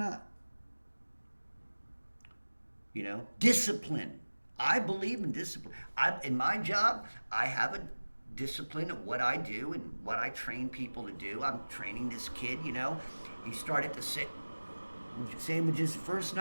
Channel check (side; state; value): both; inverted; correlation -1.00